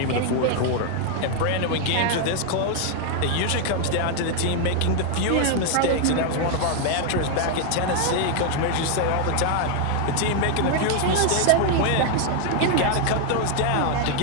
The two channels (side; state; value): both; different; correlation 0.00